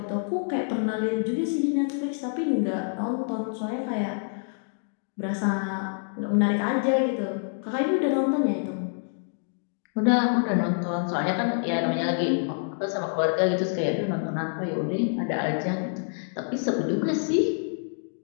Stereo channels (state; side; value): silent; right; digital silence